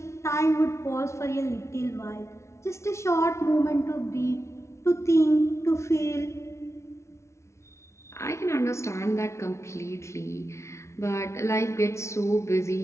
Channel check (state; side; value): late; right; 0.13 ms